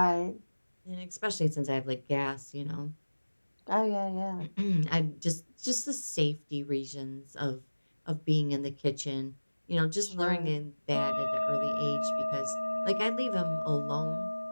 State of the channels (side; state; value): both; inverted; correlation -1.00